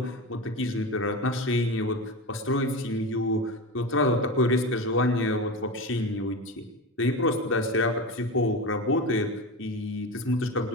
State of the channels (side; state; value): both; normal; correlation 0.24